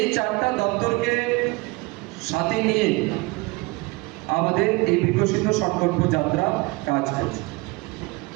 চারটা দপ্তরকে সাথে নিয়ে আমাদের এই বিকশিত সংকল্প যাত্রা কাজ করছে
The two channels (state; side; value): quieter; left; 24.6 dB